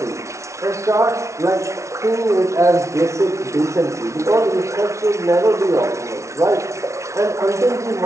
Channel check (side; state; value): left; late; 0.14 ms